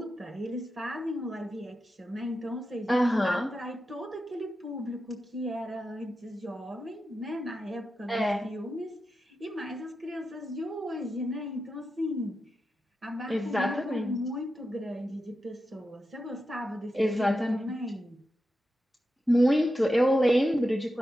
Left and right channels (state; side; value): normal; both; correlation 0.89